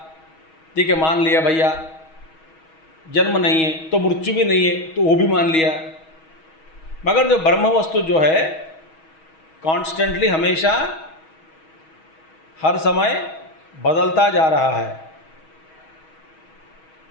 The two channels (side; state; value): right; late; 6.3 ms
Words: ठीक है मान लिया भैया, जन्म नहीं है तो मृत्यु भी नहीं है तो वो भी मान लिया। मगर जो ब्रह्म वस्तु जो है कॉन्स्टेंटली हमेशा हर समय बदलता जा रहा है।